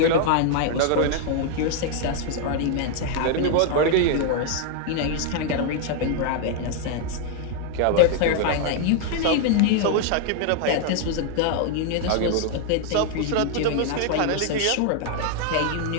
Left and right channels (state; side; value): different; both; correlation 0.00